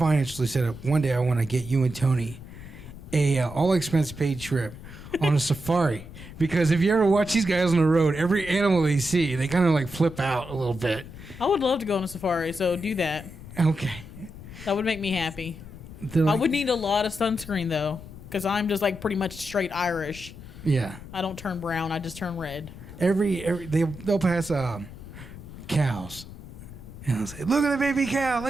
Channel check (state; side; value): noise; left; rumble, 15 dB below the sound